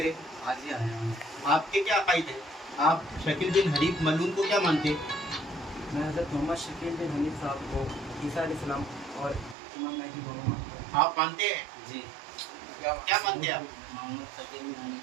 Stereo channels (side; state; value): left; drops out; at 9.6 s